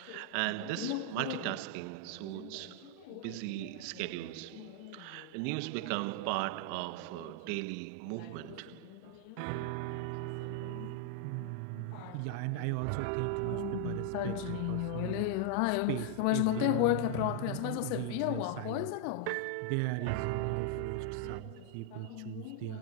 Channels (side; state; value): both; different; correlation 0.00